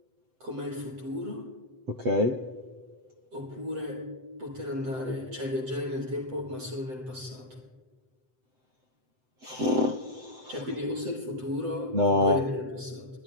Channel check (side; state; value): left; late; 7.8 ms